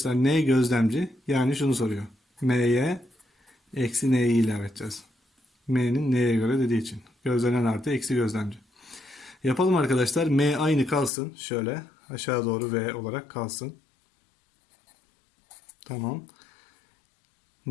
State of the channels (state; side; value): drops out; right; at 11.1 s